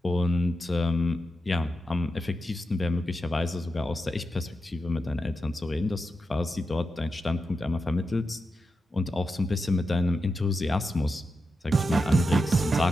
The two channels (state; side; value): normal; both; correlation 0.88